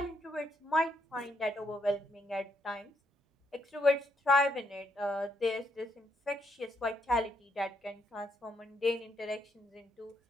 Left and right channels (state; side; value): normal; both; correlation 0.76